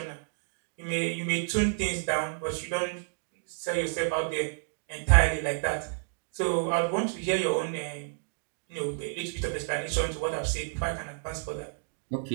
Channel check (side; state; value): left; silent; digital silence